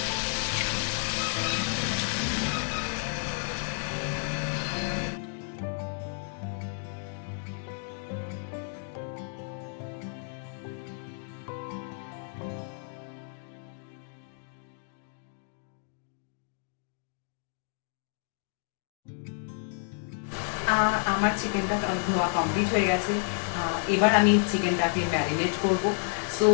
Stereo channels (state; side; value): silent; right; 58 dB below the other